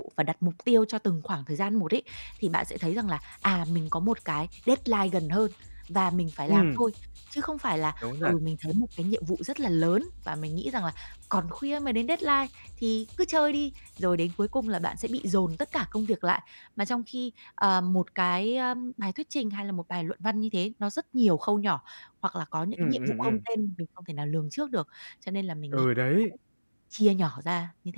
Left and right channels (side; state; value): both; inverted; correlation -1.00